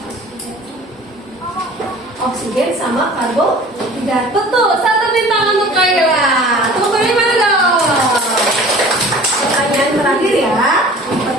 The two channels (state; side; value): normal; both; correlation 0.45